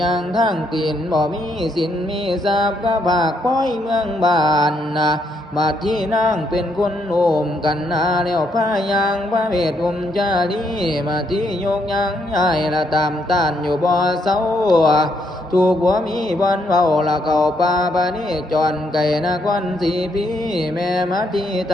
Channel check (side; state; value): both; normal; correlation 0.75